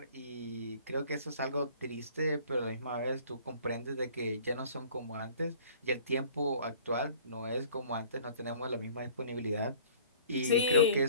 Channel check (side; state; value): both; inverted; correlation -0.50